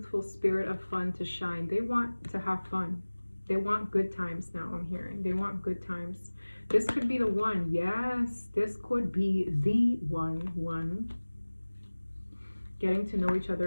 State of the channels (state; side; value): inverted; both; correlation -1.00